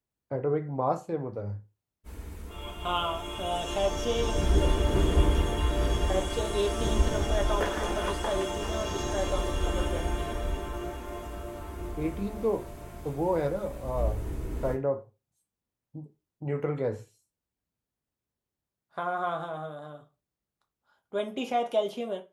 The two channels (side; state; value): both; identical; correlation 1.00